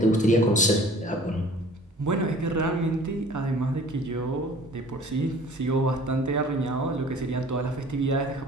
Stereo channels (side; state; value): both; normal; correlation 0.49